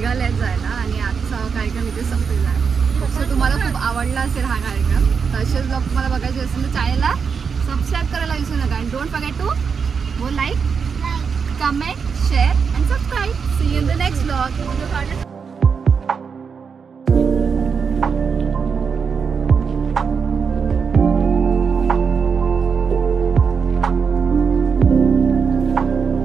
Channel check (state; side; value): quieter; left; 6.0 dB